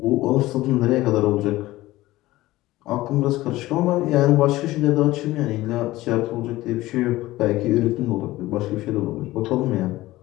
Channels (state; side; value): quieter; right; 17.4 dB